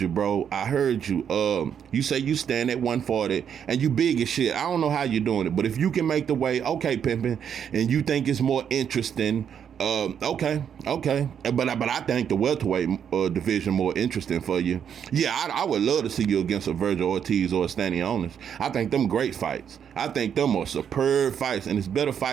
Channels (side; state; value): left; quieter; 8.2 dB